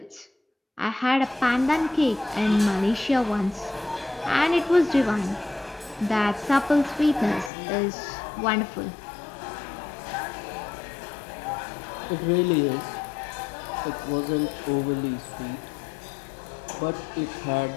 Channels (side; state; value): right; drops out; at 7.5 s